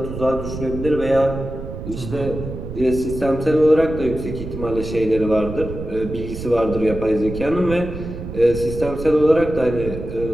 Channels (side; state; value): right; noise; rumble, 9 dB below the sound